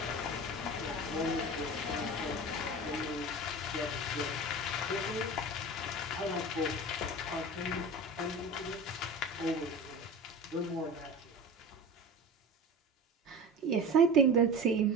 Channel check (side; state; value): both; normal; correlation 0.32